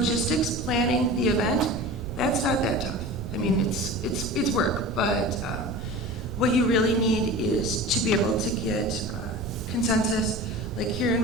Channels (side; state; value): right; noise; rumble, 9 dB below the sound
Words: planning the event, that's not that tough. I mean, it's work, but what you really need is to be able to get consensus, like Kieran